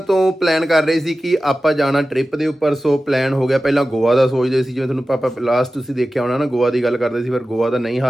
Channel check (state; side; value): normal; both; correlation 0.95